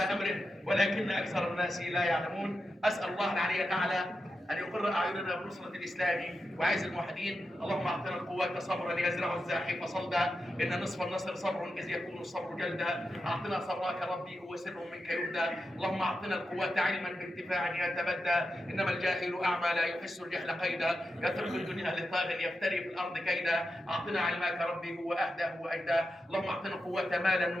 امره ولكن اكثر الناس لا يعلمون. اسال الله العلي الاعلى ان يقر اعيننا بنصره الاسلام وعز الموحدين. اللهم اعطنا القوه صبرا يزرع الزاحف صلدا، ان نصف النصر صبر اذ يكون الصبر جلدا. اعطنا صبرك ربي هو سر منك يهدى. اللهم اعطنا القوه علما بانتفاع يتبدى، انما الجاهل اعمى لا يحس الجهل قيدا، يترك الدنيا لطاغ يفتري في الارض كيدا. اعطنا علمك ربي هو اهدى هو اجدى. اللهم اعطنا قوه مالا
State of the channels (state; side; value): normal; both; correlation 0.89